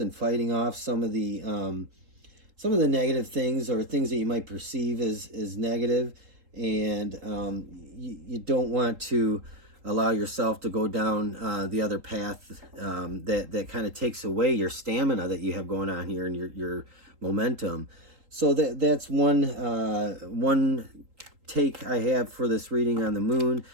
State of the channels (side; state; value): left; late; 3.8 ms